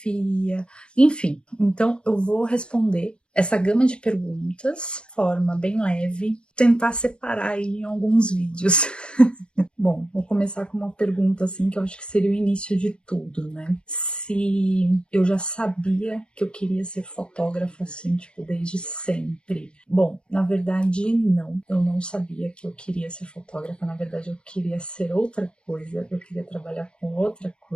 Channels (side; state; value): right; late; 0.055 ms